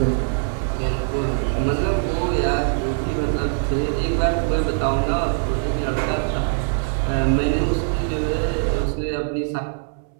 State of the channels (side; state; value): left; silent; 64 dB below the other